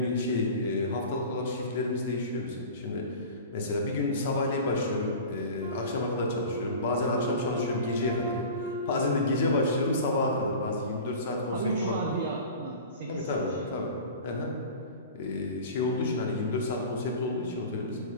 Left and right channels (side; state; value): both; inverted; correlation -0.37